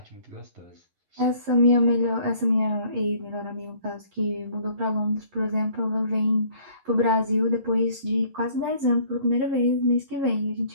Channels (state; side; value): late; left; 11 ms